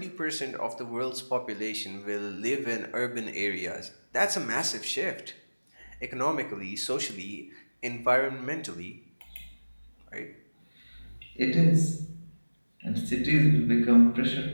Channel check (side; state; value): both; inverted; correlation -1.00